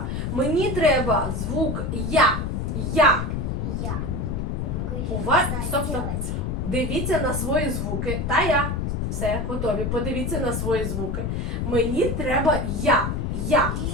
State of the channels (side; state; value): left; noise; rumble, 1 dB below the sound